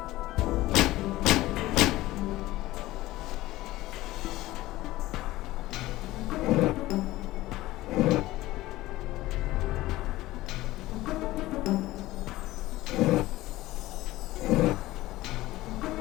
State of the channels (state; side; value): quieter; right; 17.3 dB